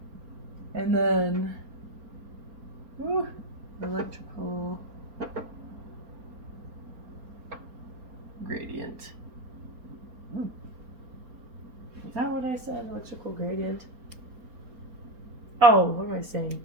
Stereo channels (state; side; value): late; left; 4.4 ms